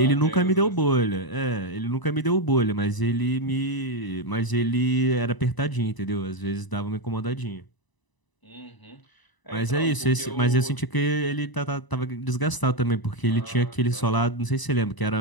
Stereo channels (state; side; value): late; right; 1.0 ms